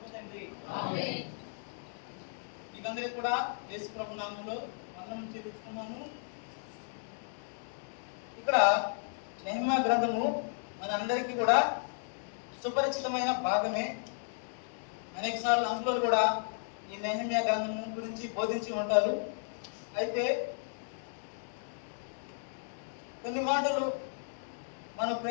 తండ్రి. ఆమేన్. మీకందరికీ కూడా యేసు ప్రభు నామములో వందనం చెల్లించుకున్నాను. ఇక్కడ నెహెమ్యా గ్రంథము మనందరికీ కూడా సుపరిచితమైన భాగమే. అనేక సార్లు అంకులు కూడా ఈ నెహెమ్యా గ్రంథము గురించి బోధించి ఉంటారు. అయితే కొన్ని మాటలు మన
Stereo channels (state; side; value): silent; right; digital silence